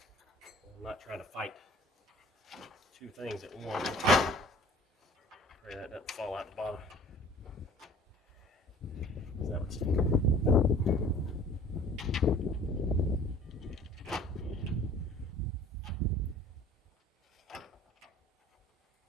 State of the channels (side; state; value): both; normal; correlation 0.48